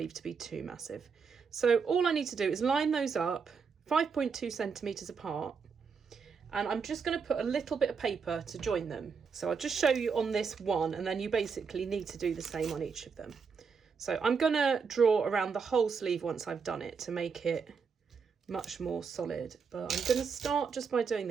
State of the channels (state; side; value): quieter; left; 5.7 dB